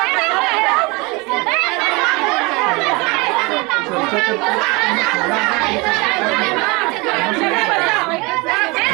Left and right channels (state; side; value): quieter; left; 26.4 dB